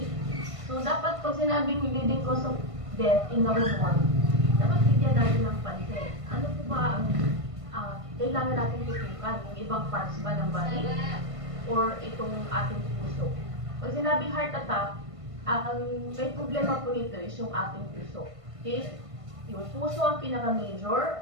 So, dapat pag sinabing leading cause of death in the whole world, dapat bigyan natin ng pansin. Ano po ba ang kailangan natin tutukan? Yung ibang parts ba ng body? Or itong ating puso? Pag sinabing heart attack, ang may problema po nito is yung ating puso. Okay? Yung puso ang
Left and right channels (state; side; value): late; left; 1.5 ms